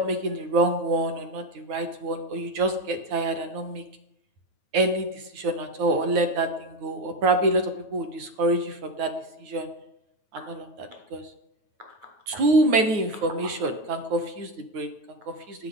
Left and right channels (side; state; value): left; late; 9.3 ms